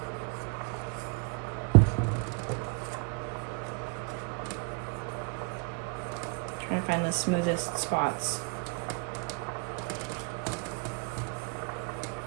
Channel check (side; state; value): left; quieter; 33.2 dB